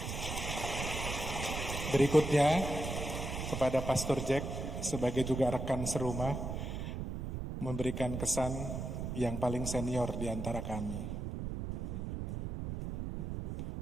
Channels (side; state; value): right; noise; rumble, 4 dB below the sound